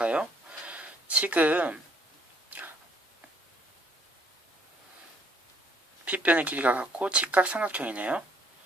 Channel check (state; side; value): normal; both; correlation 0.64